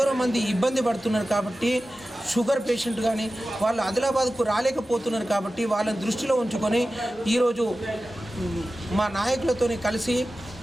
మంది ఇబ్బంది పడుతున్నారు. కాబట్టి షుగర్ పేషెంట్ కానీ వాళ్ళు ఆదిలాబాద్కు రాలేకపోతున్నారు. కాబట్టి వాళ్ళని దృష్టిలో ఉంచుకొని ఈరోజు మా నాయకులతో కలిసి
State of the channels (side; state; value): both; normal; correlation 0.94